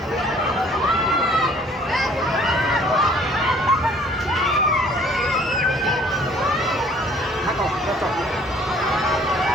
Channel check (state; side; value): normal; both; correlation 0.57